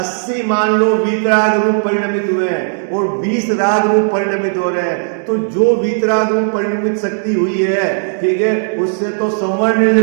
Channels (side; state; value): left; silent; digital silence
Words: मान लो वीतराग रूप परिणमित हुए हैं और 20 राग रूप परिणमित हो रहे हैं। तो जो वीतराग रूप परिणमित शक्ति हुई है, ठीक है, उससे तो संवर्ण